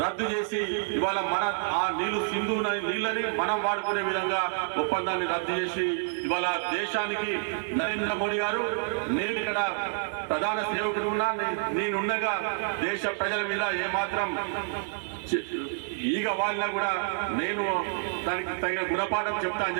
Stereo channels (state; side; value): silent; left; digital silence